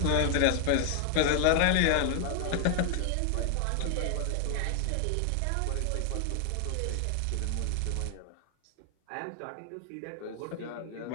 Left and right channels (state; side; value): different; both; correlation 0.00